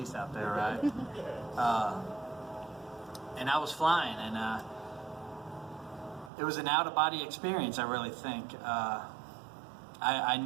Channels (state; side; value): drops out; left; at 6.3 s